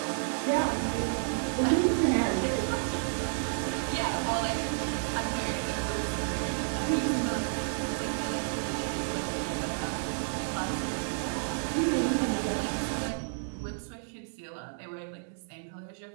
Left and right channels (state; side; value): silent; left; digital silence